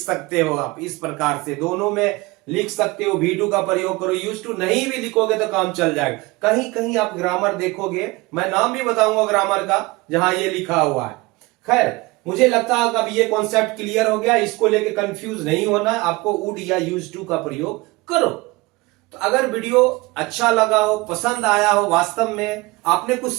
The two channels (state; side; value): quieter; left; 23.0 dB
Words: हो आप इस प्रकार से, दोनों में लिख सकते हो, V2 का प्रयोग करो, यूज टू नहीं भी लिखोगे तो काम चल जाएगा। कहीं कहीं आप ग्रामर देखोगे, मैं नाम भी बताऊंगा ग्रामर का जहां ये लिखा हुआ है। खैर, मुझे लगता है कि अब ये कॉन्सेप्ट क्लियर हो गया, इसको लेके कंफ्यूज नहीं होना है, आपको वुड या यूज टू का प्रयोग करो। तो अगर वीडियो अच्छा लगा हो, पसंद आया हो, वास्तव में आपने कुछ